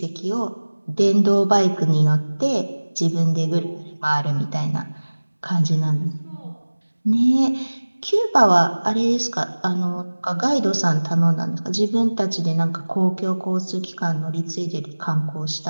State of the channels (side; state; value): both; inverted; correlation -1.00